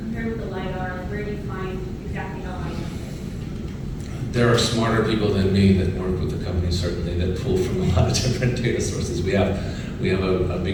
Compared with the LiDAR, where do you find exactly how high it is? There are smarter people than me that work with the company, certainly, that pull from a lot of different data sources. We have a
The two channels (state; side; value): identical; both; correlation 1.00